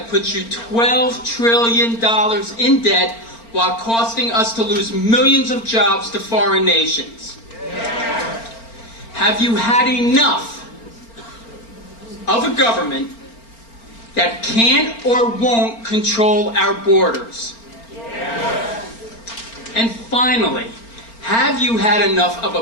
puts you $12 trillion in debt while costing us to lose millions of jobs to foreign nations? Yes. Have you had enough of a government that can't or won't control our borders? Yes. And finally, have you had enough of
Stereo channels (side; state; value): right; late; 4.4 ms